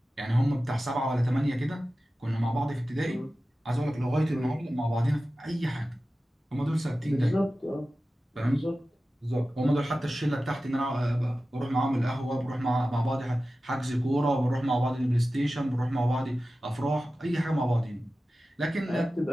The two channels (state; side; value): normal; both; correlation 0.95